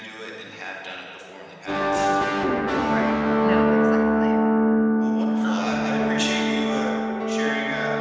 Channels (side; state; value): both; identical; correlation 1.00